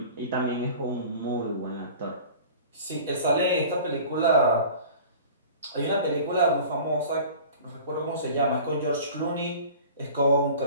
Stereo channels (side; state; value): both; inverted; correlation -0.41